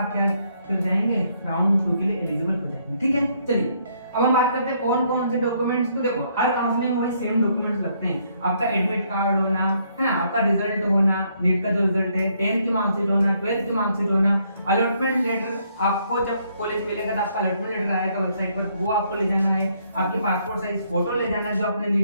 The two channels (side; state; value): both; inverted; correlation -0.70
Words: क्या कर जाएंगे, राउंड 2 के लिए एलिजिबल हो जाएंगे, ठीक है। चलिए अब हम बात करते हैं कौन कौन से डॉक्यूमेंट्स। तो देखो हर काउंसलिंग में वही सेम डॉक्यूमेंट्स लगते हैं, आपका एडमिट कार्ड होना है ना, आपका रिजल्ट होना, नीट का जो रिजल्ट है, 10th की मार्कशीट होना, 12th की मार्कशीट होना, अलॉटमेंट लेटर आपको जब कॉलेज मिलेगा तो आपका अलॉटमेंट लेटर आएगा वेबसाइट पर, वो आपको ले जाना है, आपकी पासपोर्ट साइज फोटो ले जाना है जो आपने